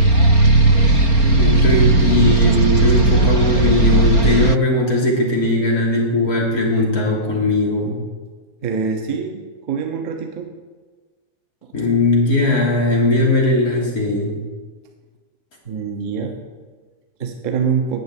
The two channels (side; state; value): right; late; 4.3 ms